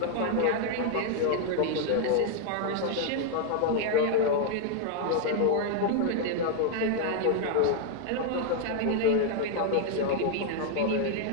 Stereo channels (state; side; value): different; both; correlation 0.00